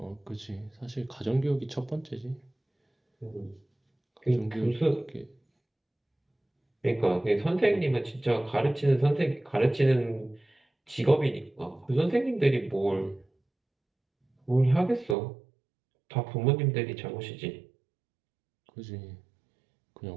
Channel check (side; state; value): left; drops out; at 15.2 s